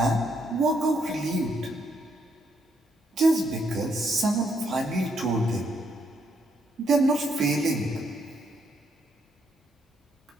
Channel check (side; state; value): both; normal; correlation 0.75